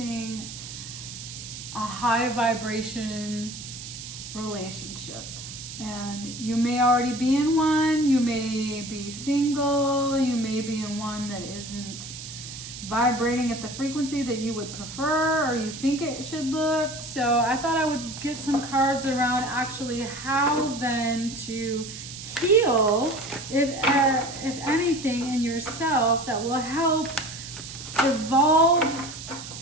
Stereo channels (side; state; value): right; noise; hiss, 11 dB below the sound